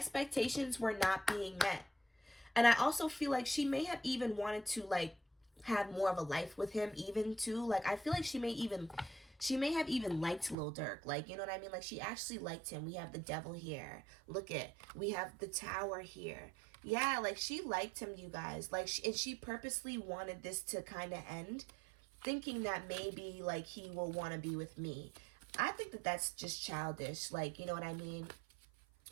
were not being met. And I also feel like she may have even wanted to, like, have more of a life with him even, too. Like, I feel like she may have even liked Lil Durk. Like, you know what I mean? Like, she actually liked him. We have the devil here. Look it. We have the tower here. Yeah, like, she liked him, you guys. Like, and she purposely wanted this to kind of end, thinking that maybe, like, he will want to be with me. I think that that's just childish. Like, you know what I mean?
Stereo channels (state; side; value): drops out; left; at 10.6 s